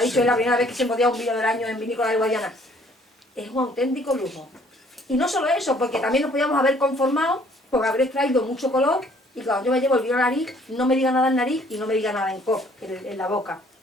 dicho, es la primera vez que se embotella un vino del año en Vinícola de Guadiana, es un auténtico lujo. Y no solo eso, porque también nos podíamos haber conformado con haber extraído mucho color y cuando yo me llevo el vino a la nariz, no me diga nada en nariz y no me diga nada en la boca.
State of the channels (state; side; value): normal; both; correlation 0.60